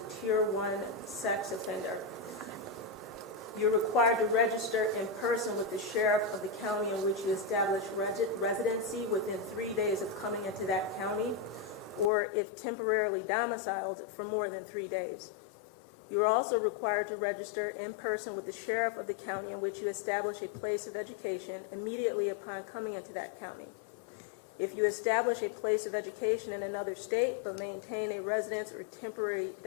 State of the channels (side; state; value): right; drops out; at 12.1 s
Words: Tier 1 sex offender. You're required to register in person with the sheriff of the county in which you establish residency within 3 days of coming into that county, or if temporarily domiciled for more than 3 days. You are also required to register in person with the sheriff of the county in which you establish a place of education immediately upon coming into that county. If you establish a place of education in another state but maintain a residence or temporary